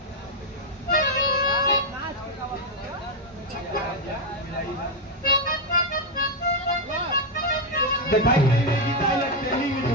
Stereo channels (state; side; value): normal; both; correlation 0.02